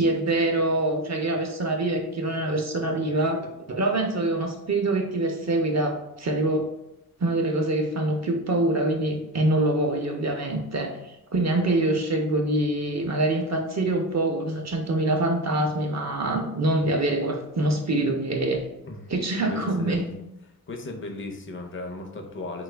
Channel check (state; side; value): normal; both; correlation 0.22